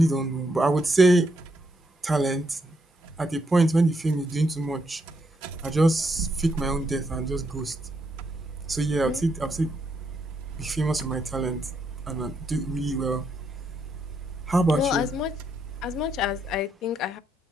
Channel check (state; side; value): normal; both; correlation 0.77